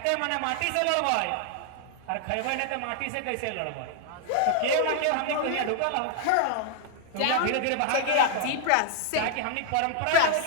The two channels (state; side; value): different; both; correlation 0.00